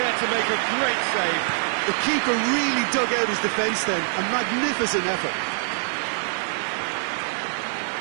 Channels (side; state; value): left; silent; 62 dB below the other